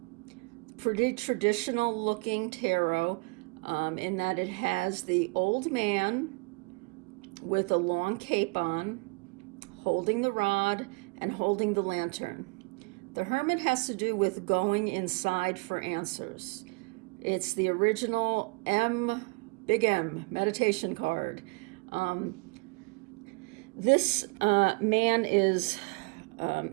Pretty traditional looking tarot in that it has the old man with a long cape on, holding the rod and holding the lantern. The Hermit has to do with going inside for answers. It's the original big M meditation card. This man is,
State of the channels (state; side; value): quieter; left; 30.8 dB